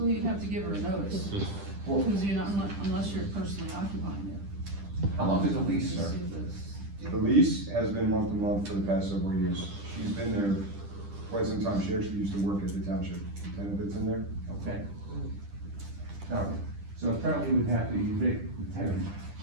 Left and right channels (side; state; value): left; late; 10 ms